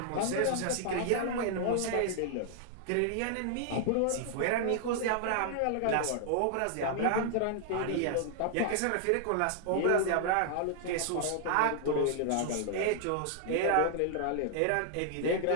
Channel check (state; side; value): different; both; correlation 0.00